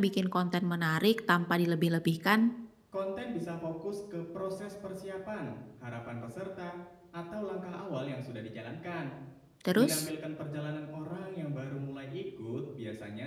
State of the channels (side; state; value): both; identical; correlation 1.00